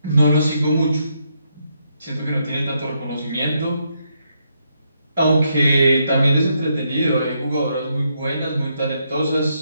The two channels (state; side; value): inverted; both; correlation -0.78